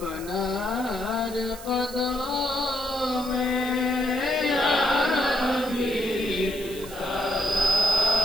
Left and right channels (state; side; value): noise; right; hiss, 15 dB below the sound